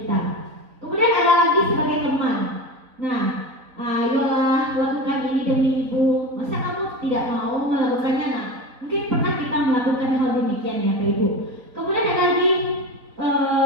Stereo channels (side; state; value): left; late; 4.0 ms